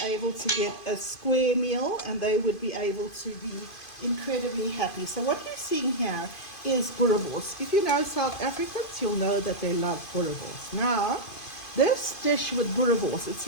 able to get a square meal and they would be able to be incredibly happy. So what you're seeing here is boerewors. If you know South Africans, you'll know that they love boerewors. Now, this dish with boerewors,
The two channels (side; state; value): right; late; 2.5 ms